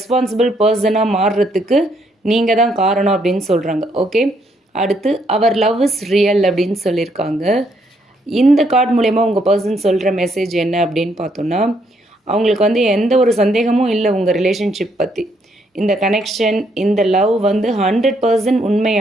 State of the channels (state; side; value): normal; both; correlation 0.72